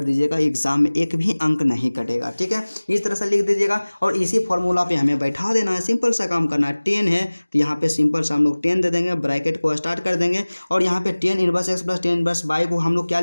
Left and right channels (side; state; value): both; inverted; correlation -1.00